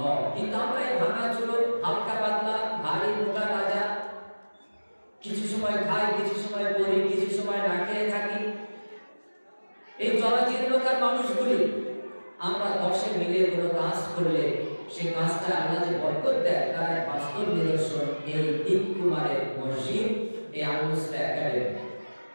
কিন্তু আমরা এই ভাঙাচুরো, হালকা পাতলা, ভারী মোটা তাজা, কিছু সময় খাই, কিছু সময় পড়ি, কিছু সময় না খেয়ে থাকি, এই জরাজীর্ণকার মানুষগুলি আমরা 10 মিলে কোনো কাজ করলে সেই কাজটা আল্লাহ যে বরকত দেয়, তার এক বাস্তব নিদর্শন এই তিনকুমারের মসজিদ, এই আল মুসলিহ একাডেমি।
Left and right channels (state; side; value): inverted; both; correlation -1.00